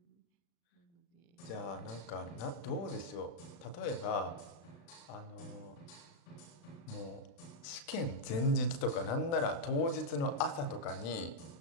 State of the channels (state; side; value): late; right; 35 ms